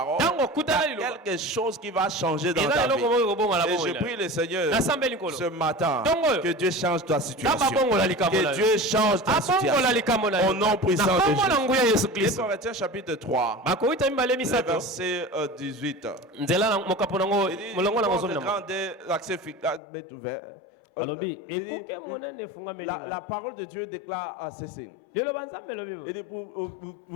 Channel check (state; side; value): drops out; right; at 19.8 s